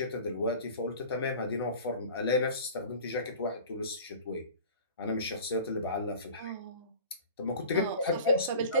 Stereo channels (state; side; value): inverted; both; correlation -0.40